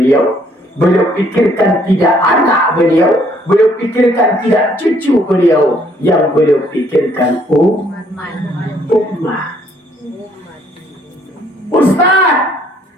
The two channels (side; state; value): both; normal; correlation 0.65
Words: beliau pikirkan tidak anak beliau, beliau pikirkan tidak cucu beliau, yang beliau pikirkan umat. Ustaz,